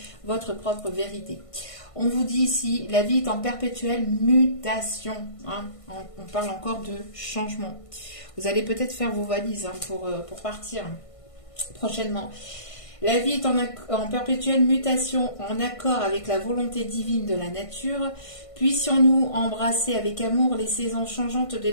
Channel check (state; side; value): late; right; 1.5 ms